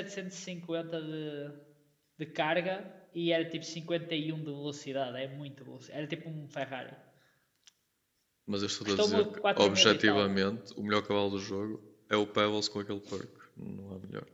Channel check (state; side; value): identical; both; correlation 1.00